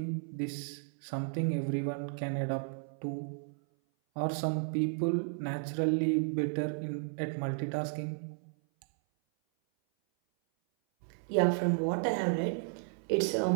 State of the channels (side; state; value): left; silent; 56 dB below the other